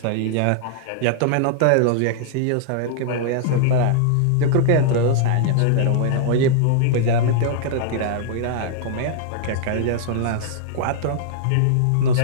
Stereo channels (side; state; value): both; different; correlation -0.01